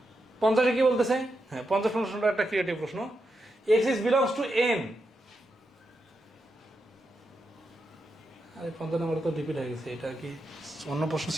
50 কি বলতেছে? হ্যাঁ, 50 প্রশ্নটা একটা ক্রিয়েটিভ প্রশ্ন। X is belongs to N, আরে 50 নম্বর তো রিপিট হয়ে গেছে, এটা কি অন্য প্রশ্ন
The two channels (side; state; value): both; normal; correlation 0.85